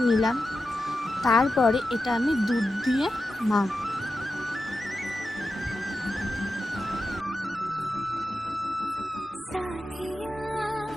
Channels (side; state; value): both; normal; correlation 0.90